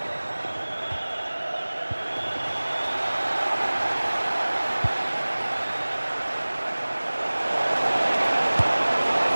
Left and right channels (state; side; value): inverted; both; correlation -1.00